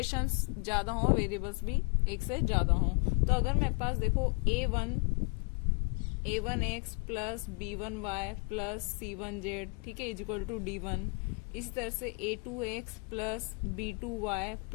ज्यादा हो, वेरिएबल्स भी एक से ज्यादा हो। तो अगर मेरे पास देखो a1x plus b1y plus c1z, ठीक है, इज इक्वल टू d1। इसी तरह से a2x plus b2y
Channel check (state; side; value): quieter; right; 34.4 dB